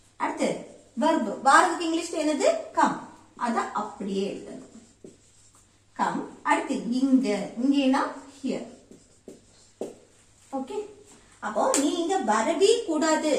அடுத்து verb, வாரத்துக்கு இங்கிலீஷ்ல என்னது? come. அத அப்படியே எழுதணும், come. அடுத்து இங்கேனா here. ஓகே, அப்போ நீங்க வரவே கூடாது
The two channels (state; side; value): identical; both; correlation 1.00